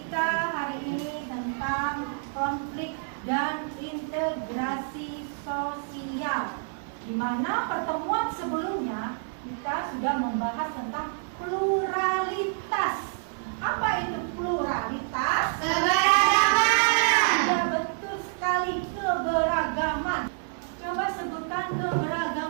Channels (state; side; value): silent; left; digital silence